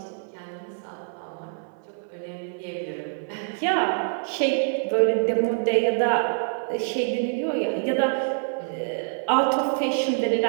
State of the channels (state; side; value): silent; left; 61 dB below the other